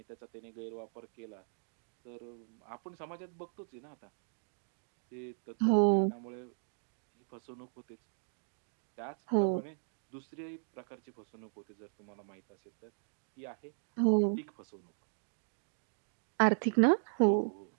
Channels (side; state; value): left; silent; digital silence